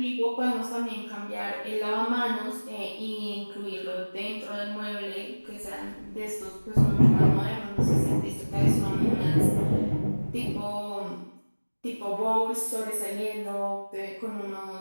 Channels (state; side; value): inverted; both; correlation -1.00